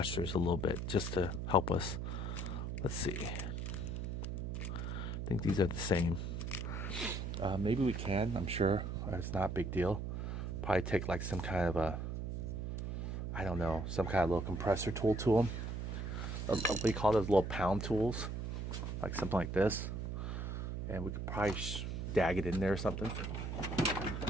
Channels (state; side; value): noise; right; hum, 3 dB below the sound